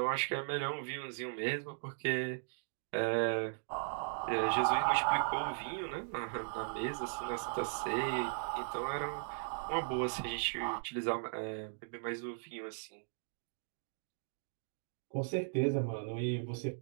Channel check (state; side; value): silent; left; digital silence